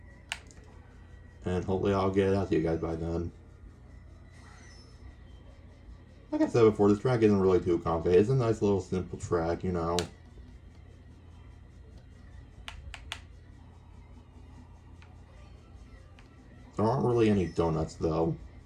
And hopefully I'll get it out to you guys by then. Like I said before, this track isn't really too complicated. It's a nice little simple track, you know. There aren't really any donuts though.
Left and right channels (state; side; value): identical; both; correlation 1.00